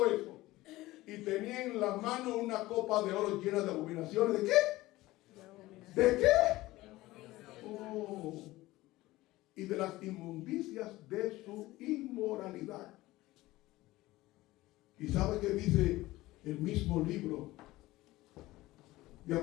eso. Y tenía en la mano una copa de oro llena de abominaciones. ¿De qué? ¿De qué? Oh. Y de las inmundicias de su inmoralidad. ¿Y sabe qué dice el mismo libro de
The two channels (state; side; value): quieter; right; 18.1 dB